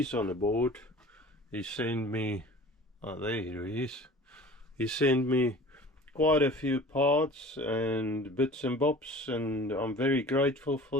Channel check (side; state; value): both; normal; correlation 0.43